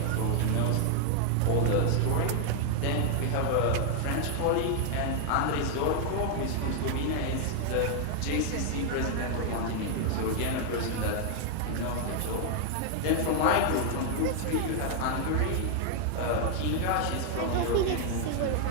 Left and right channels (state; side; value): different; both; correlation 0.00